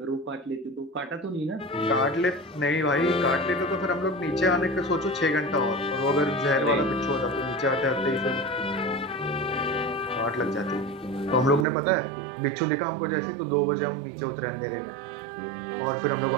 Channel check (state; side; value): drops out; left; at 11.7 s